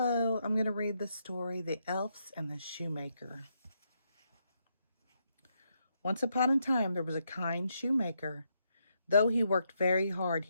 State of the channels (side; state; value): both; inverted; correlation -0.79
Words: I'm going to read the story, The Elves and the Shoemaker. Once upon a time, there was a kind shoemaker. Though he worked very hard,